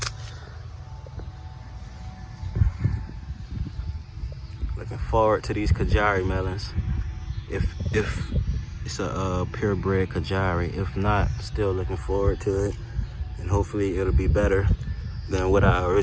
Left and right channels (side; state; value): both; identical; correlation 1.00